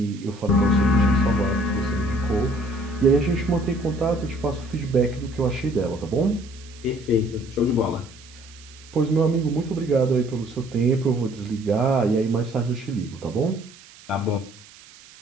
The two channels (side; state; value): right; noise; hiss, 22 dB below the sound